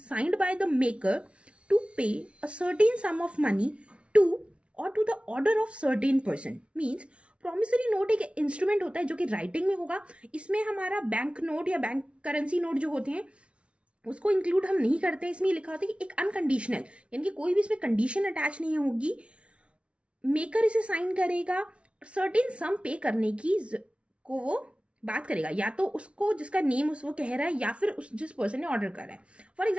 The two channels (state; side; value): late; left; 0.060 ms